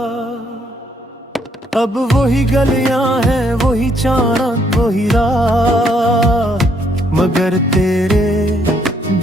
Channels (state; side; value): normal; both; correlation 0.71